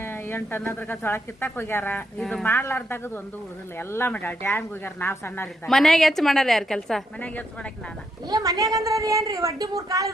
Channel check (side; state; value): both; normal; correlation 0.78